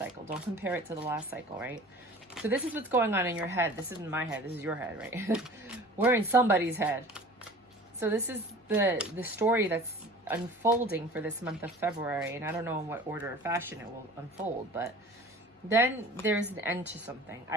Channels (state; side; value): normal; both; correlation 0.43